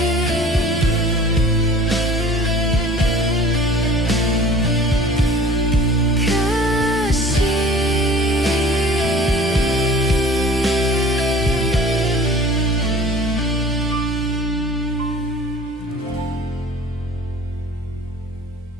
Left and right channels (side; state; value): both; normal; correlation 0.46